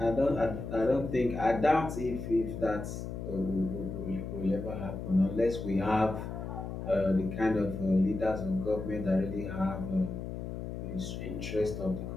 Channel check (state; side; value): noise; left; hum, 6 dB below the sound